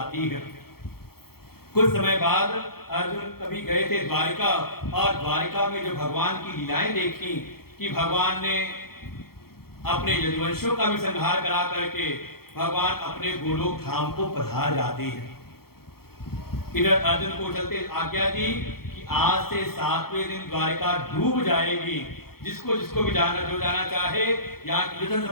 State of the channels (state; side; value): late; right; 0.94 ms